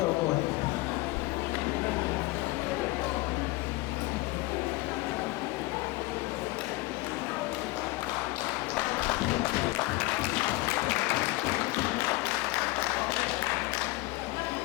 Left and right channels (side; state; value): right; quieter; 20.5 dB